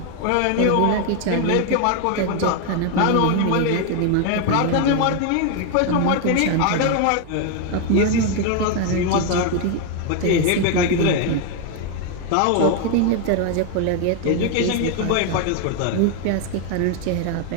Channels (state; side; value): different; both; correlation 0.01